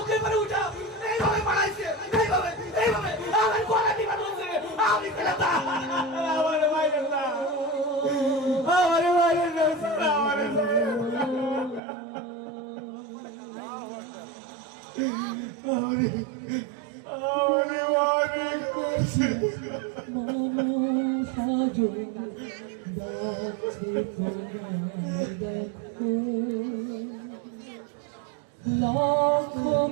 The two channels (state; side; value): drops out; left; at 11.8 s